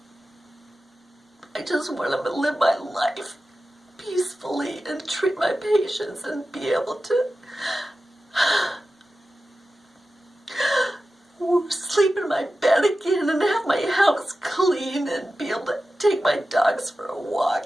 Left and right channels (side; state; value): both; normal; correlation 0.93